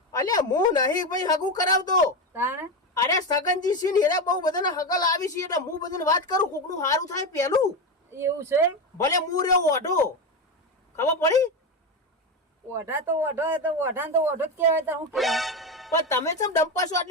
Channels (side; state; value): both; normal; correlation 0.15